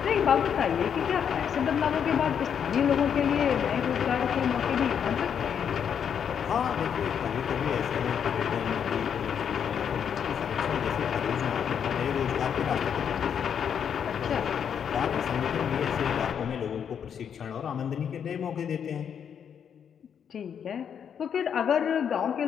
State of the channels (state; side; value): quieter; right; 7.9 dB